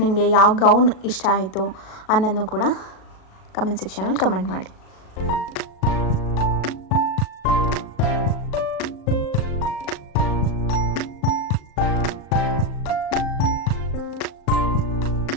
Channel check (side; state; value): right; late; 37 ms